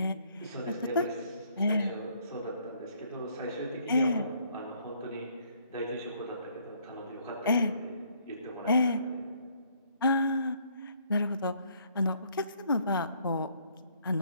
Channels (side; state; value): both; inverted; correlation -0.65